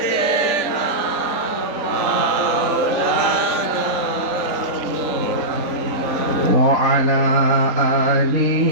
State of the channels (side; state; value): left; late; 3.9 ms